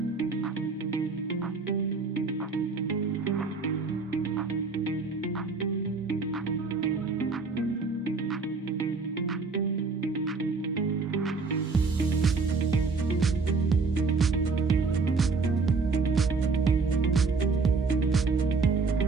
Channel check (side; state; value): left; quieter; 4.3 dB